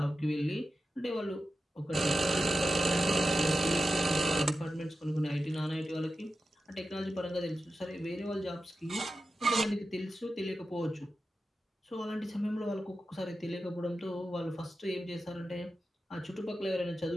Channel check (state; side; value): normal; both; correlation 0.92